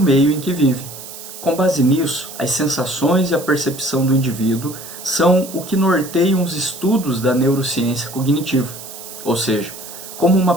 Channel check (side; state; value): right; noise; hiss, 13 dB below the sound